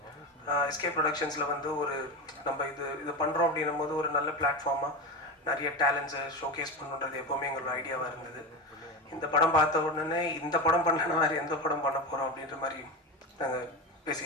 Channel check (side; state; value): both; normal; correlation 0.21